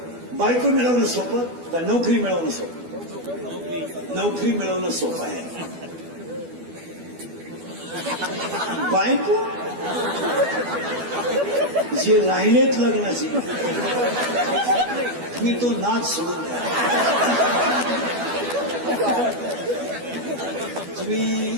बायको मिळवणं सोपं का नोकरी मिळवणं सोपं? नोकरी मिळवणं सोपं आहे. बायको जे राहिलेत लग्नाचे तुम्ही तो नाच सोडून द्या. तुम्ही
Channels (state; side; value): late; left; 12 ms